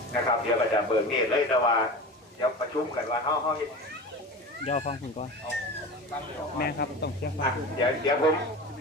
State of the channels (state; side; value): normal; both; correlation 0.32